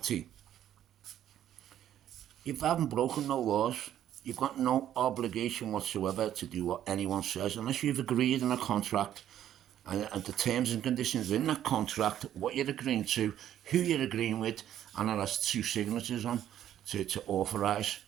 you haven't broken no laws. You've got no obligation whatsoever to do what anyone says, unless you've agreed in a contract, and the terms and conditions in that contract, what you're agreeing to, who you're agreeing with, and it has two signatures on to authorise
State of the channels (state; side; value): quieter; left; 11.2 dB